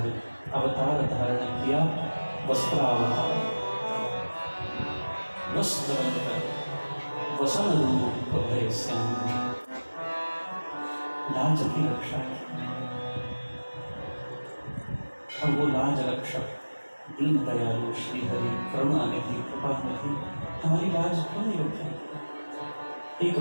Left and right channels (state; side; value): inverted; both; correlation -1.00